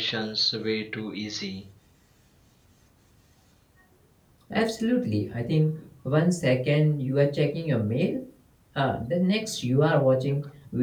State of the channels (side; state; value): both; identical; correlation 1.00